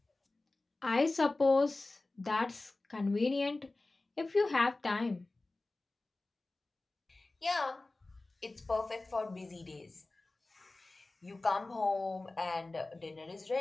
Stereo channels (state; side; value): quieter; right; 3.1 dB